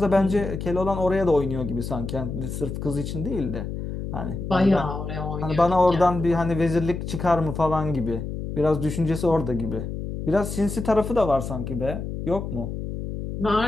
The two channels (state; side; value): noise; left; hum, 6 dB below the sound